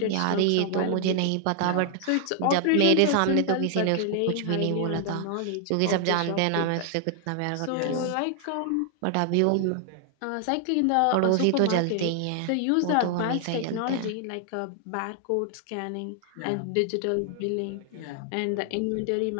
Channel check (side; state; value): both; different; correlation 0.00